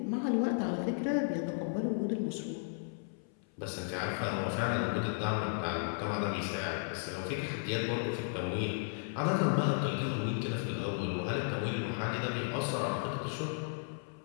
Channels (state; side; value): silent; right; 55 dB below the other